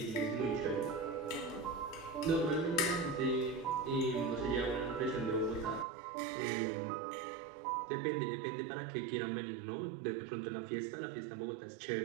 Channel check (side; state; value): left; drops out; at 5.9 s